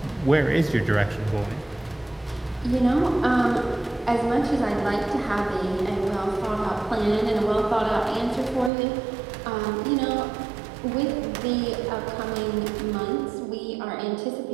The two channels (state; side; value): drops out; left; at 8.7 s